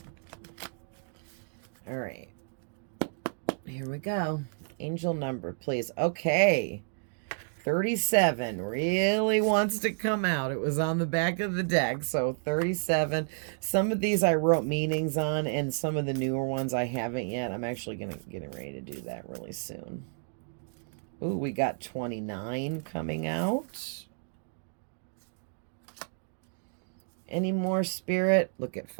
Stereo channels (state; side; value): silent; left; digital silence